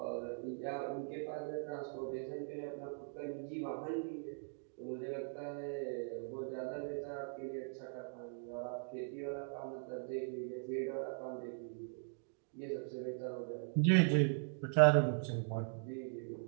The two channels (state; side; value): silent; left; digital silence